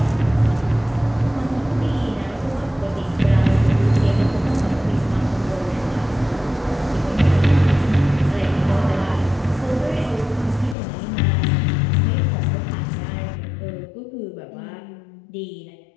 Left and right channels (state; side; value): drops out; right; at 10.8 s